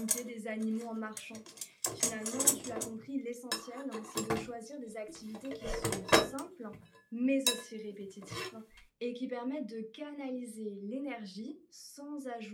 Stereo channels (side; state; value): both; identical; correlation 1.00